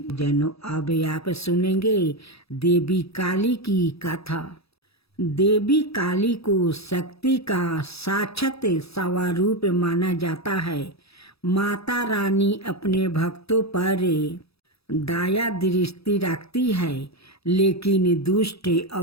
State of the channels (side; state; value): right; late; 0.77 ms